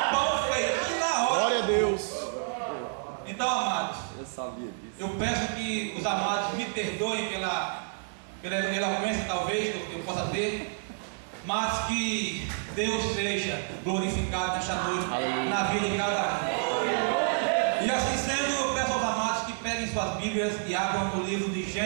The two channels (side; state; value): left; silent; digital silence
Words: pão feito na hora. Glória a Deus. Então, amados, Eu sabia disso. eu peço que os amados me perdoem pela eloquência talvez que eu possa ter, mas que Deus seja glorificado nesta noite na vida de cada um. E assim sendo, eu peço aos amados que peguem suas Bíblias e abram no livro de